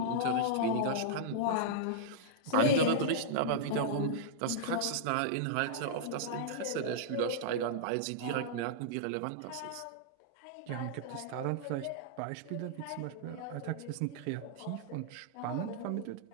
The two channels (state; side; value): different; both; correlation -0.02